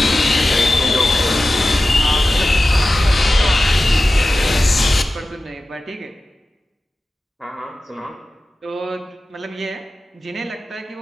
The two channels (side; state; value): both; normal; correlation 0.94